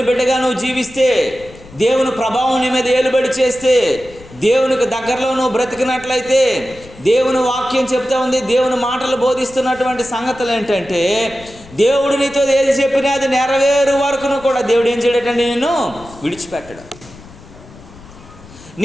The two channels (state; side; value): noise; left; rumble, 21 dB below the sound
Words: బిడ్డగా నువ్వు జీవిస్తే, దేవుని ప్రభావం నీ మీద ఏలుబడి చేస్తే, దేవునికి దగ్గరలో నువ్వు బ్రతికినట్లయితే, దేవుని వాక్యం చెప్తా ఉంది, దేవుని మాటలు బోధిస్తున్నటువంటి సంగతులు ఏంటంటే, దేవుడు నీతో ఏది చెప్పినా అది నెరవేరు వరకును కూడా దేవుడు ఏం చేయడటండి, నిన్ను విడిచిపెట్టడు.